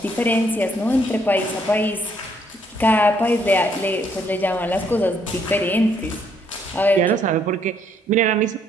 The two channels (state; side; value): normal; both; correlation 0.69